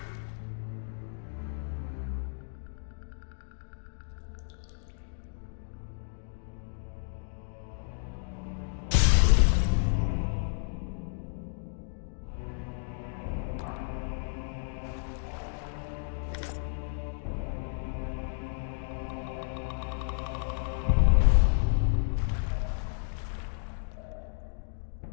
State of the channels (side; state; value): right; silent; digital silence